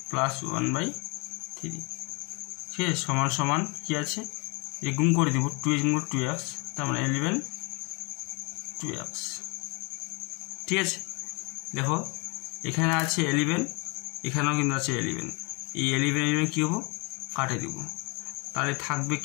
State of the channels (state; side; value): quieter; right; 30.3 dB